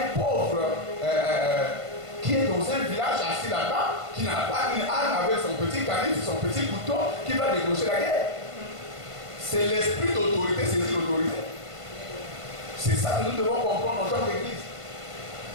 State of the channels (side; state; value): left; late; 1.5 ms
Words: pauvre qui est dans un village assis là-bas, qui n'a pas une arme avec son petit canif, son petit couteau, qui va déclencher la guerre. C'est l'esprit d'autorité, c'est l'autorité. C'est ça que nous devons comprendre en tant qu'Église.